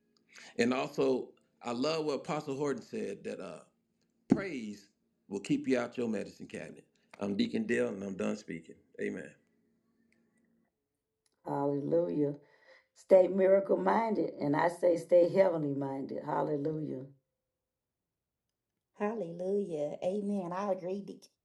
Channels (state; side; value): identical; both; correlation 1.00